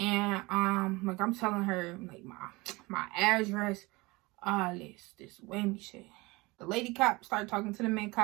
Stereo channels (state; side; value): quieter; left; 23.2 dB